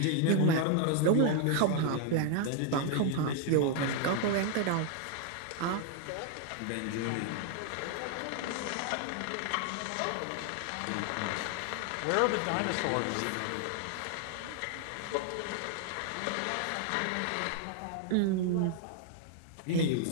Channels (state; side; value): different; both; correlation 0.00